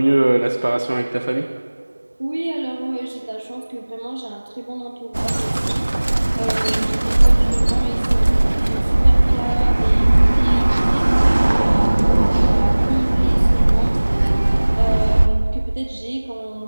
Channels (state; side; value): inverted; both; correlation -1.00